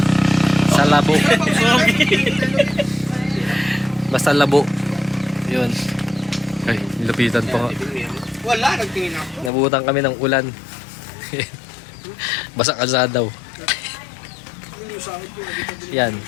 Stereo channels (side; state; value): right; drops out; at 9.5 s